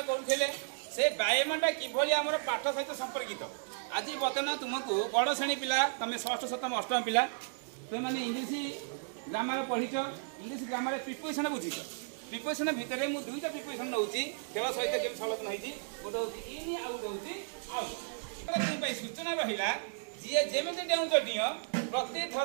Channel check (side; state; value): left; silent; digital silence